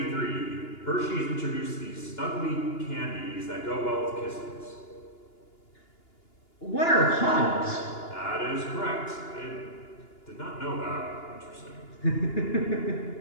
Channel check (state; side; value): late; right; 2.9 ms